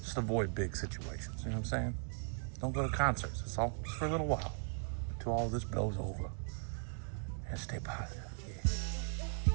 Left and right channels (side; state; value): left; silent; 52 dB below the other